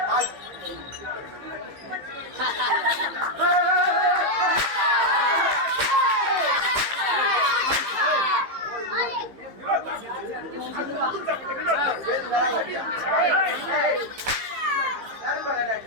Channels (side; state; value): left; late; 15 ms